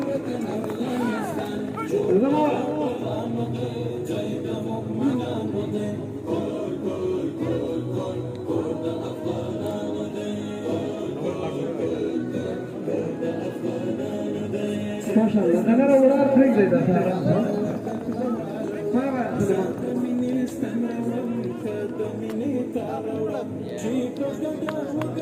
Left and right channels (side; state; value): both; identical; correlation 1.00